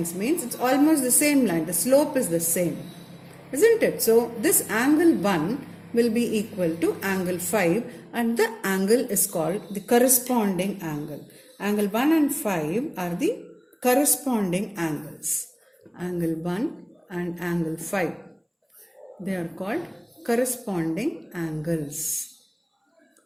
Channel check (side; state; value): both; identical; correlation 1.00